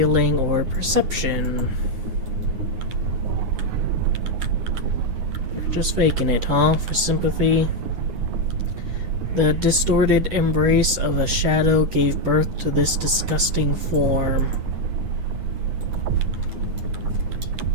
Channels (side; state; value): left; late; 9.7 ms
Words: or perception. Just faking it, huh? For sympathy. The distorted embrace of a shadow gave birth to this disgusting form.